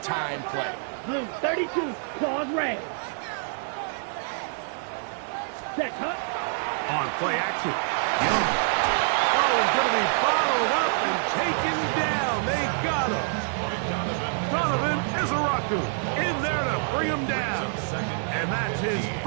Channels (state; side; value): silent; left; digital silence